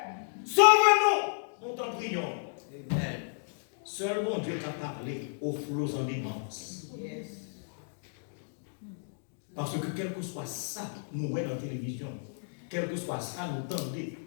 sauve-nous, nous t'en prions. Amen. Seul mon Dieu t'a parlé aux flots en immense. Yes. Parce que quel que soit ça, nous voyons dans la télévision, quel que soit ça, nous tendez,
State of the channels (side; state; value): right; silent; digital silence